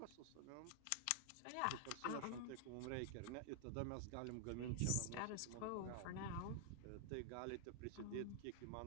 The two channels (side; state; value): both; different; correlation -0.01